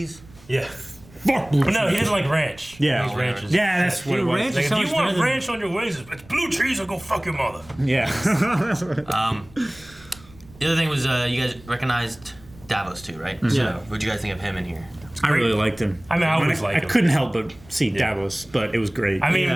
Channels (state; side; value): noise; right; rumble, 23 dB below the sound